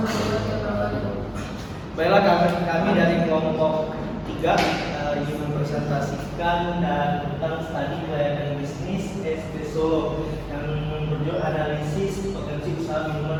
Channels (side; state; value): both; identical; correlation 1.00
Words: Baiklah, kami dari kelompok 3 ingin mempresentasikan tentang studi kelayakan bisnis ST Solo yang berjudul analisis potensi usaha